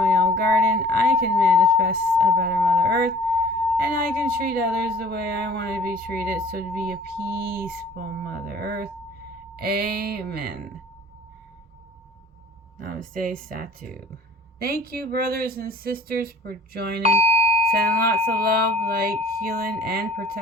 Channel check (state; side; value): normal; both; correlation 0.50